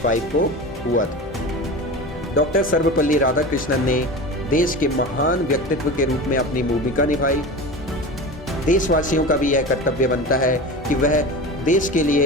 को हुआ था। डॉक्टर सर्वपल्ली राधाकृष्णन ने देश के महान व्यक्तित्व के रूप में अपनी भूमिका निभाई। देशवासियों का भी यह कर्तव्य बनता है कि वह देश के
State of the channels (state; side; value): normal; both; correlation 0.29